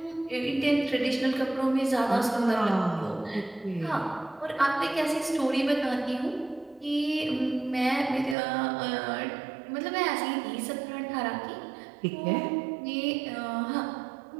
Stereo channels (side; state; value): left; drops out; at 8.3 s